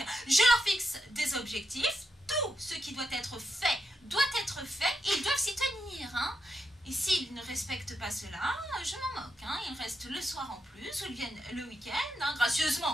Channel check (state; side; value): normal; both; correlation 0.84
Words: Je leur fixe des objectifs. Tout ce qui doit être fait et ils doivent s'y tenir. Et s'ils ne respectent pas cela, je m'en moque. Ils restent le soir en plus ou ils viennent le week-end,